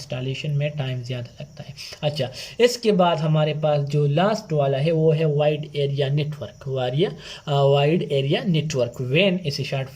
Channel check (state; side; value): identical; both; correlation 1.00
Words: میں ٹائم زیادہ لگتا ہے۔ اچھا، اس کے بعد ہمارے پاس جو لاسٹ والا ہے وہ ہے wide area network, wide area network, وین اسے شارٹ